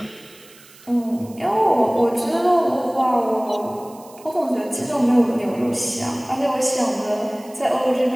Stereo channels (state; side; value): noise; right; hiss, 24 dB below the sound